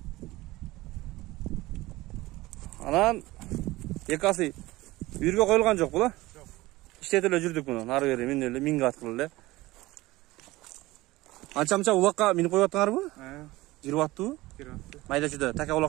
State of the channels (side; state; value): left; quieter; 19.1 dB